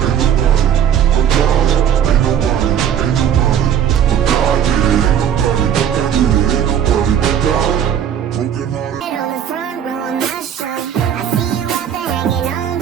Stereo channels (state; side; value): quieter; left; 9.2 dB